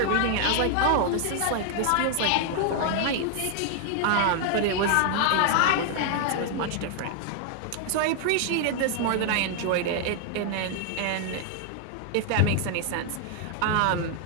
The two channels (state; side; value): different; both; correlation 0.00